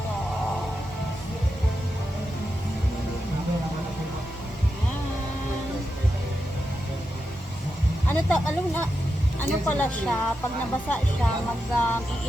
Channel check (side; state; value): both; normal; correlation 0.88